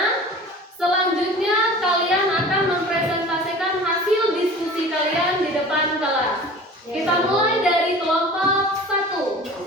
Selanjutnya kalian akan mempresentasikan hasil diskusi kalian di depan kelas. Kita mulai dari kelompok 1.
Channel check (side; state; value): both; normal; correlation 0.41